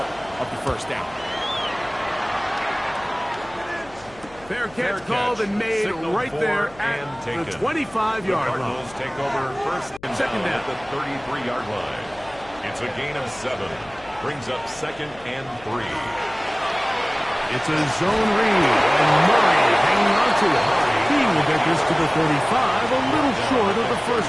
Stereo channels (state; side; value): noise; left; hum, 23 dB below the sound